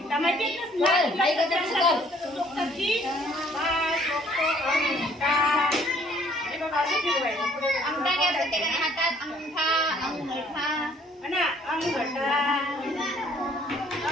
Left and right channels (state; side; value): normal; both; correlation 0.60